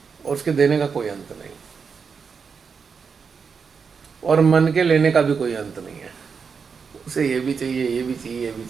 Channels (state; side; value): quieter; left; 5.8 dB